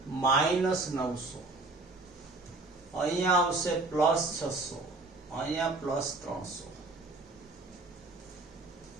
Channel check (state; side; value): quieter; left; 3.2 dB